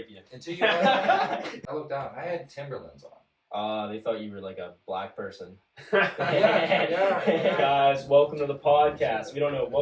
you. Until you. I looked down. I had Timberlands on. They thought you were like a black person. Yeah. Guys, welcome to the podcast. We don't know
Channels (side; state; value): both; identical; correlation 1.00